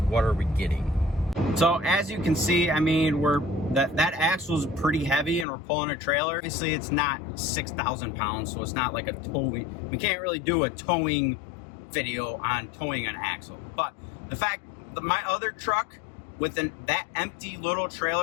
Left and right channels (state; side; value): drops out; right; at 5.5 s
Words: what are we getting? So as you can see, I mean, that axle is pretty heavy, and we're pulling a trailer. Obviously, it's not 6,000 pounds, so it's not like a towing. We can't really do a towing video on towing an axle. But the fact that my other truck, with that empty little